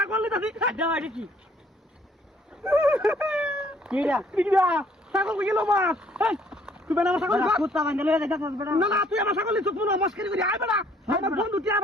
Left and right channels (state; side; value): normal; both; correlation 0.61